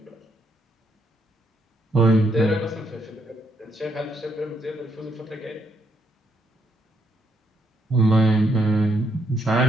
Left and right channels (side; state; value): both; normal; correlation 0.75